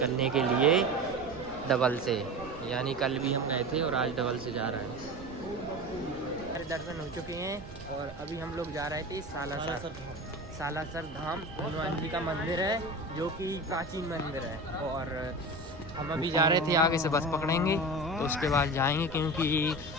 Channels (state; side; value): noise; right; rumble, 16 dB below the sound